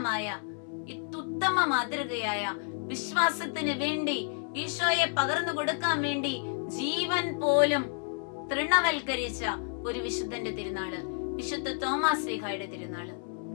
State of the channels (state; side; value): silent; right; 58 dB below the other